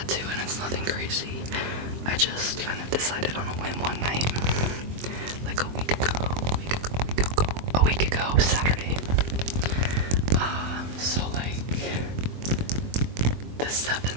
and it's nothing crazy. I just kind of decided on a whim one night, like a week ago, Saturday. So like the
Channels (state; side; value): late; left; 23 ms